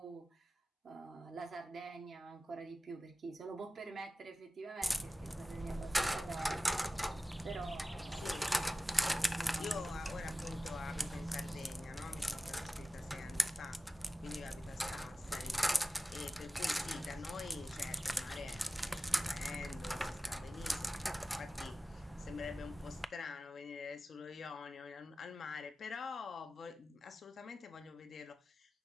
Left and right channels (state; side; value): normal; both; correlation 0.95